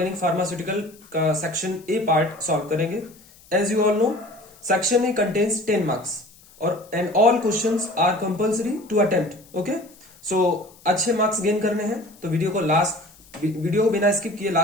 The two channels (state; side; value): noise; left; hiss, 26 dB below the sound